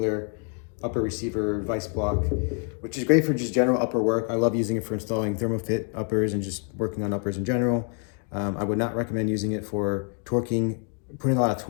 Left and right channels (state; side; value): quieter; right; 39.8 dB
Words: upper receiver vise block, which is great for just general upper work. I love using it for installing Thermofit uppers and just working on uppers in general. I would not recommend using it for torquing, putting a lot of